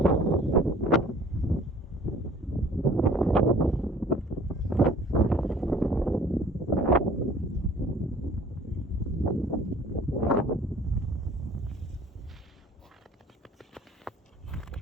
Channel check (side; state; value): both; normal; correlation 0.51